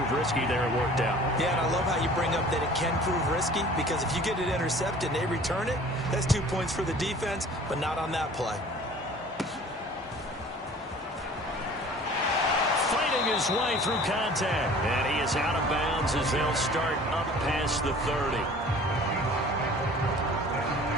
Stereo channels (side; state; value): both; normal; correlation 0.47